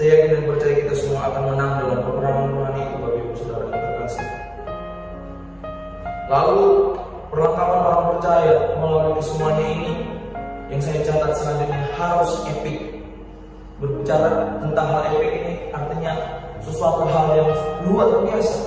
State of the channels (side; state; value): both; identical; correlation 1.00